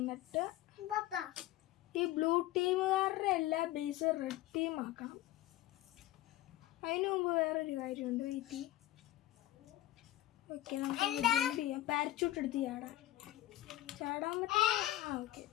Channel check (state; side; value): quieter; right; 15.4 dB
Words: ഈ ബ്ലൂ ടീമുകാരുടെ എല്ലാ ബേസ് റെഡ് ടീം ആക്കണം. അതിനു മുമ്പ് വേറൊരു കാര്യമുണ്ട്, വെയിറ്റ്. ഓക്കെ, നമുക്ക് ജമ്പ് ചെയ്യാം. പാരച്യൂട്ട് എടുത്ത് ചാടാൻ പറ്റും. ഓക്കെ,